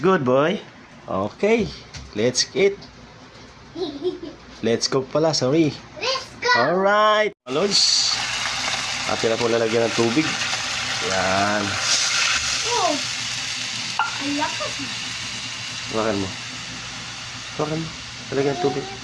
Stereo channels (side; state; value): both; identical; correlation 1.00